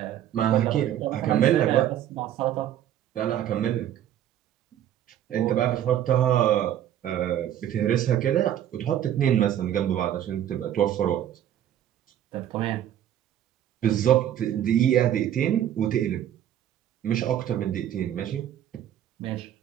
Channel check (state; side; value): quieter; left; 11.0 dB